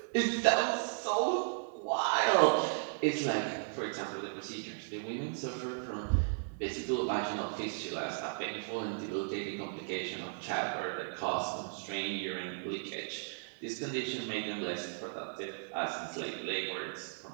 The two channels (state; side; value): silent; left; digital silence